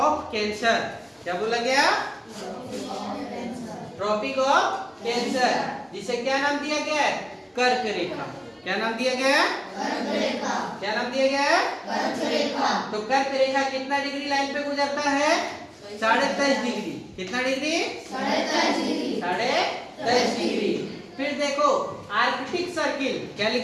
cancer. क्या बोला गया? ट्रॉपिक ऑफ कैंसर, जिसे क्या नाम दिया गया है? कर्क रेखा। क्या नाम दिया गया है? कर्क रेखा। क्या नाम दिया गया है? कर्क रेखा। तो कर्क रेखा कितना डिग्री लाइन पे गुजरता है? 23.5 डिग्री। कितना डिग्री? 23.5 डिग्री। 23.5 डिग्री। फिर देखो आर्कटिक सर्किल। क्या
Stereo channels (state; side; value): identical; both; correlation 1.00